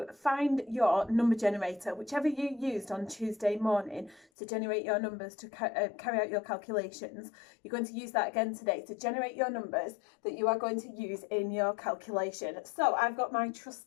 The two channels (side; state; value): right; drops out; at 4.2 s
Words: find your number generator, whichever you used on Tuesday morning to generate your numbers to carry out your calculations. You're going to use that again today to generate your numbers that you are going to use in your calculation. So I've got my